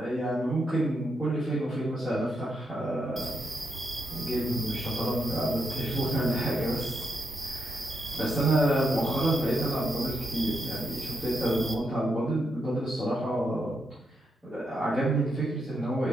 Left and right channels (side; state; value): both; normal; correlation 0.81